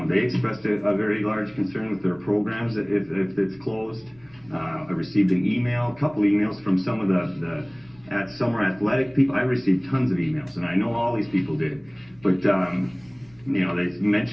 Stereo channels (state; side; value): noise; right; rumble, 29 dB below the sound